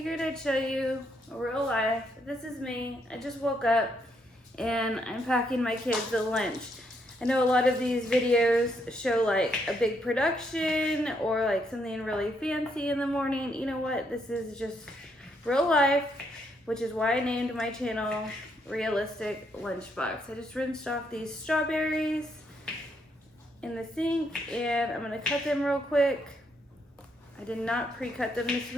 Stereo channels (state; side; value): normal; both; correlation 0.75